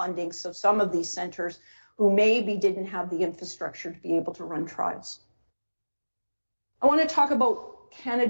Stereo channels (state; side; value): inverted; both; correlation -1.00